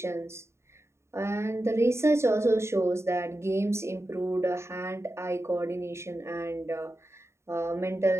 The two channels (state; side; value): late; left; 0.13 ms